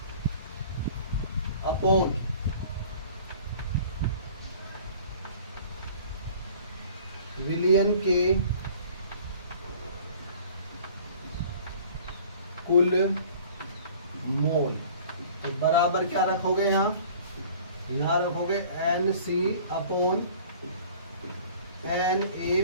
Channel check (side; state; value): both; inverted; correlation -0.48